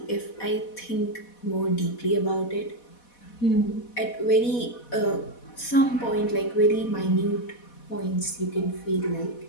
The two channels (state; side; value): late; right; 4.1 ms